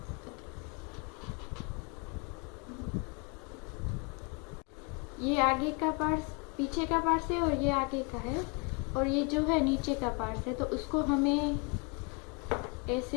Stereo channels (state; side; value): quieter; right; 33.3 dB